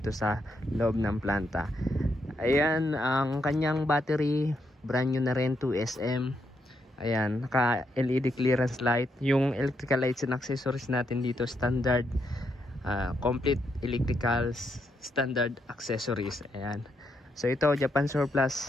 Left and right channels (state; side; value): normal; both; correlation 0.79